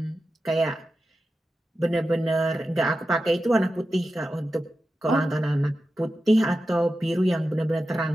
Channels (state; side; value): normal; both; correlation 0.92